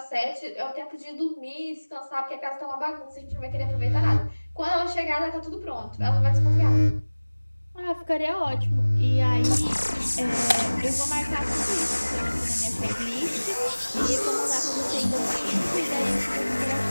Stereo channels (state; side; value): inverted; both; correlation -1.00